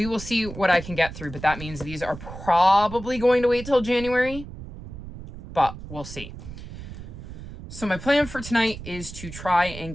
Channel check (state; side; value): noise; right; rumble, 12 dB below the sound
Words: will see what I can get through, but that means these are probably going to wait till January, but we'll see. So my plan for tonight is to try and